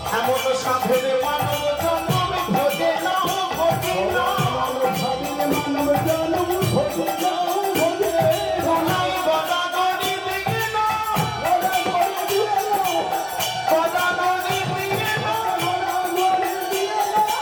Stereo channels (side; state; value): both; identical; correlation 1.00